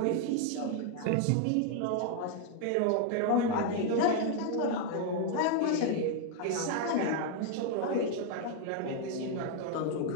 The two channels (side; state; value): both; different; correlation 0.00